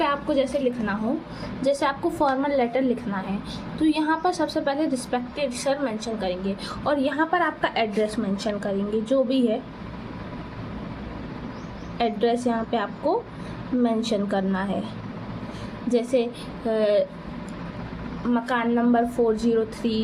आपको जैसे लिखना हो, जैसे आपको फॉर्मल लेटर लिखना है, तो यहाँ पर सबसे पहले रिस्पेक्टेड सर मेंशन करेंगे और यहाँ पर आपका एड्रेस मेंशन करेंगे, जो भी है एड्रेस यहाँ पे आपको मेंशन करना है। जैसे मकान नंबर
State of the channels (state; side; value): identical; both; correlation 1.00